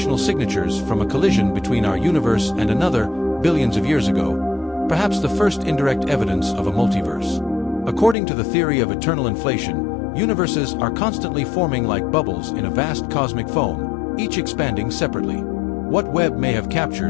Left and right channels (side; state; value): right; drops out; at 8.2 s